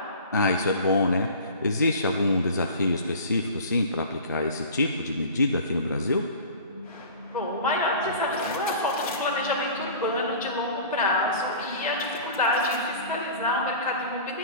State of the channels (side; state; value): both; inverted; correlation -0.40